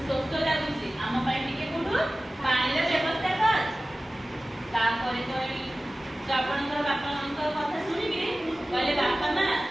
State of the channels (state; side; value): normal; both; correlation 0.97